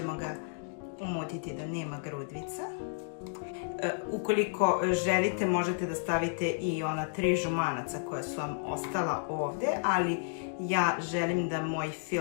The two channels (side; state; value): right; silent; digital silence